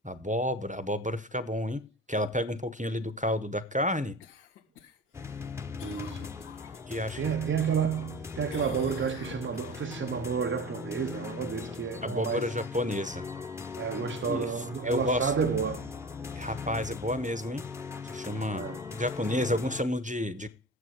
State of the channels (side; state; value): both; normal; correlation 0.35